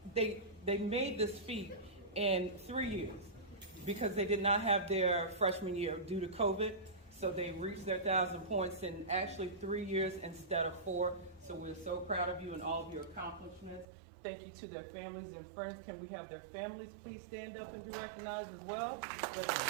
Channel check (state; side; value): drops out; left; at 13.9 s